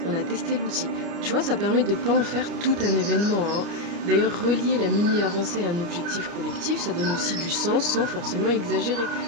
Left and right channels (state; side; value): late; left; 29 ms